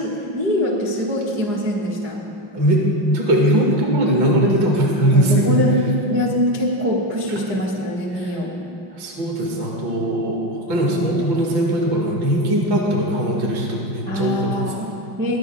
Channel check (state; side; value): late; left; 5.5 ms